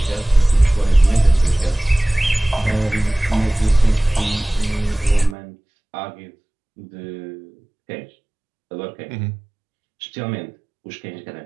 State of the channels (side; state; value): left; drops out; at 5.4 s